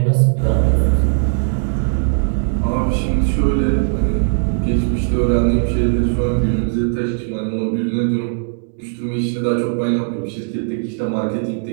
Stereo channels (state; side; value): silent; left; digital silence